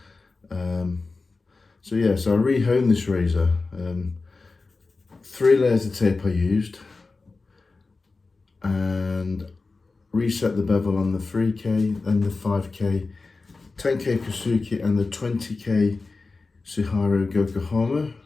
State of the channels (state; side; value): quieter; right; 3.8 dB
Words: So I rehoned this razor. 3 layers of tape I used, and reset the bevel on the 3K, then the 5K, 10K Kasuki and the 20K Suharu Yokohama,